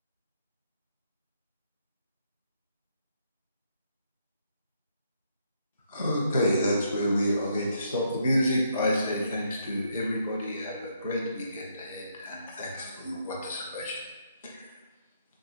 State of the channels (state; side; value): inverted; both; correlation -0.74